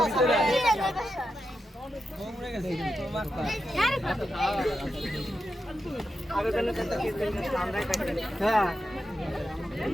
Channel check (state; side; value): normal; both; correlation 0.88